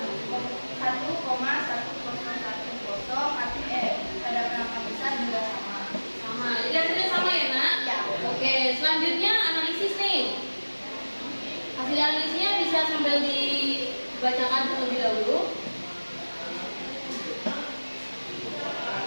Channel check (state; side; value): inverted; both; correlation -1.00